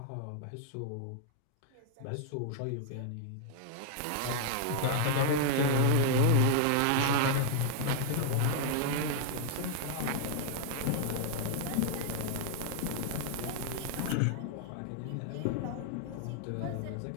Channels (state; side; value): different; both; correlation 0.00